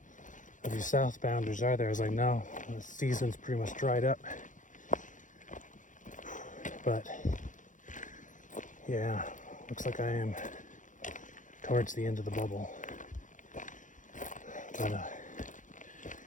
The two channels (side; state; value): right; late; 0.37 ms